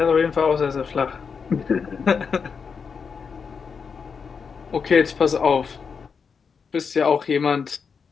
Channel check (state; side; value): quieter; right; 5.8 dB